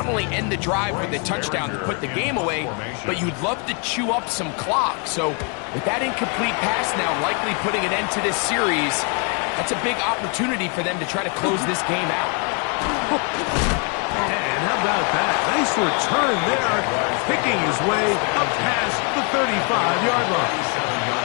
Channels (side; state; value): right; quieter; 35.7 dB